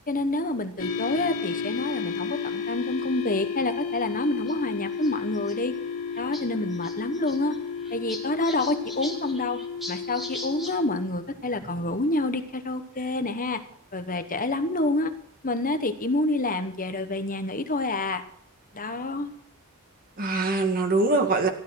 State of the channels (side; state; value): both; normal; correlation 0.25